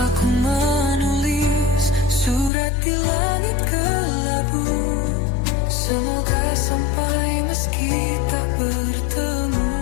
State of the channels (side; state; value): right; drops out; at 2.5 s